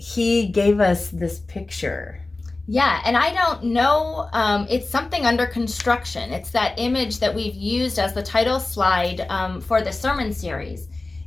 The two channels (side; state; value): right; quieter; 3.2 dB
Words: gave us this picture. Yeah, and I don't know, it's something under construction. It's that image that we've used as the title slide for the sermon series.